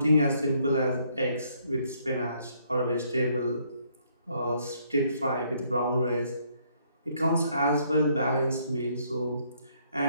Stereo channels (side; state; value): both; inverted; correlation -0.68